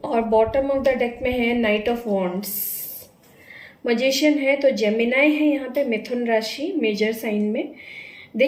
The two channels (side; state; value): both; identical; correlation 1.00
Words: और बॉटम ऑफ द डेक में है नाइट ऑफ वॉन्ड्स। मजिशियन है तो जेमिनाई है यहाँ पे, मिथुन राशि मेजर साइन में।